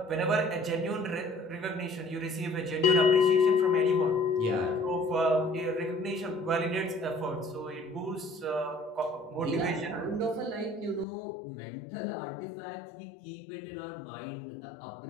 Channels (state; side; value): drops out; right; at 11.1 s